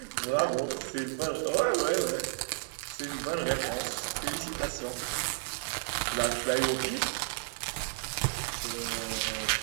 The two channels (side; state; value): left; silent; 56 dB below the other